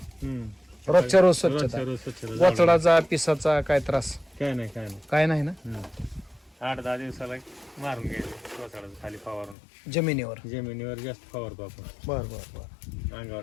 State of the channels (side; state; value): right; drops out; at 9.6 s